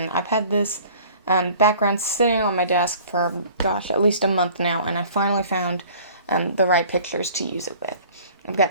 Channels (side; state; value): both; inverted; correlation -0.49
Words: I've had this background sitting on my desk for, gosh, at least a month now, and I finally found the right pictures to use it with. I've